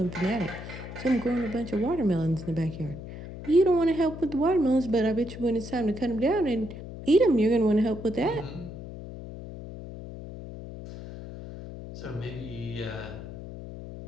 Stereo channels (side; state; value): left; noise; hum, 11 dB below the sound